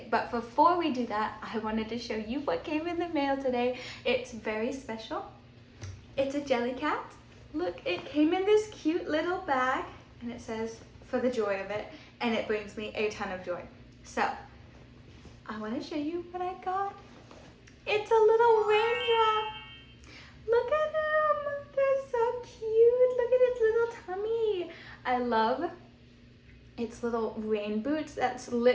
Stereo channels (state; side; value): identical; both; correlation 1.00